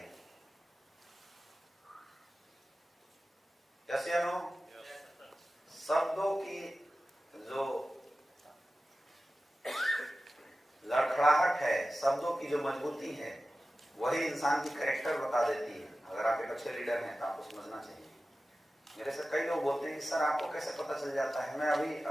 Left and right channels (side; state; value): both; normal; correlation 0.95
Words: जैसे शब्दों की जो लड़खड़ाहट है, शब्दों की जो मजबूती है, वही इंसान की कैरेक्टर बता देती है। अगर आप एक अच्छे लीडर हैं तो आपको समझना चाहिए। मेरे से कई लोग बोलते हैं कि सर आपको कैसे पता चल जाता है। मैं